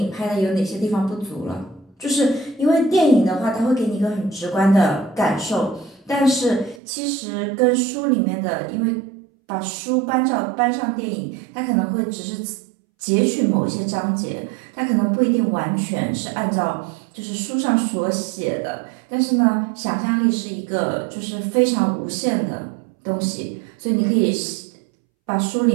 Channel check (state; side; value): drops out; left; at 6.8 s